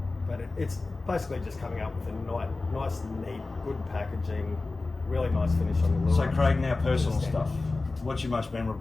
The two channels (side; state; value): right; quieter; 3.5 dB